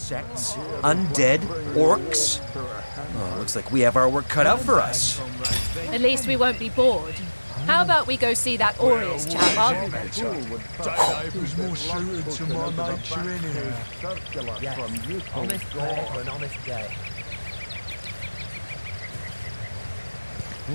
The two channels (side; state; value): both; inverted; correlation -1.00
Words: undead, orcs. Oh, looks like we have our work cut out for us. At least we won't be bored. How about we go see that Aureus chap, Arhu? Day labour's more suited to my nature anyhow. Yes, honest pay for an honest day.